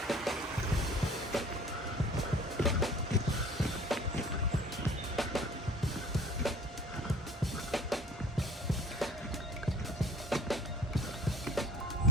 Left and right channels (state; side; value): normal; both; correlation 0.47